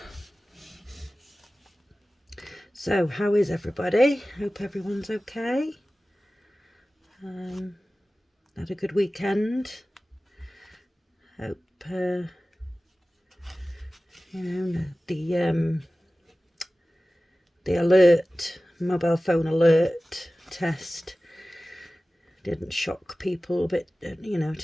So how is everybody? Hope everyone's okay. Had a good weekend. Hope the alert, mobile phone alert test didn't shock people a bit,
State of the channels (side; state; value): both; normal; correlation 0.96